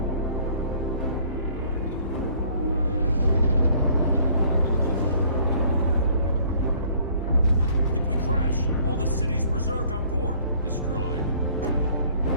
If we crash, all the city's preserved on board. Destroyed.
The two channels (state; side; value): inverted; both; correlation -0.57